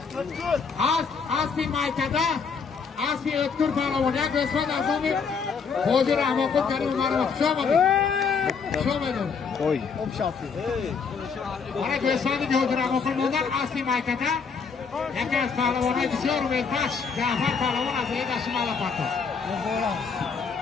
Asli maykada. Asli öttür Parlavo. Ya gösmen azami. Hozir Ahmakut karim umarım. Şomadı. Koy. Bana gösterdi ki Hocur Ahmakut'dan asli maykada. Yakaz Parlavon'a düşüyor ve baş. Cafer Parlavon azıya taşımalı patı.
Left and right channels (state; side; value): quieter; right; 5.7 dB